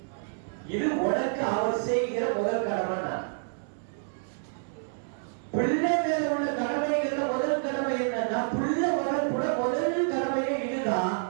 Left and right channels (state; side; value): silent; left; 59 dB below the other